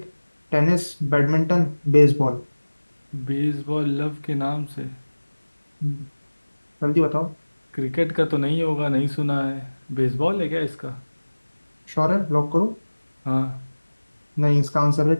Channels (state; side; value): inverted; both; correlation -1.00